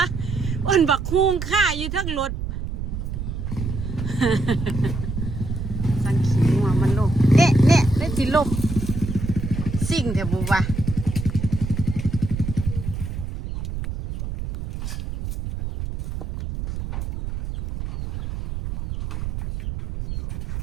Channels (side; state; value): right; noise; rumble, 5 dB below the sound